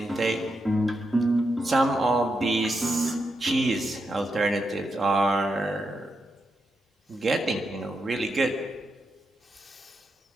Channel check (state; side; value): normal; both; correlation 0.84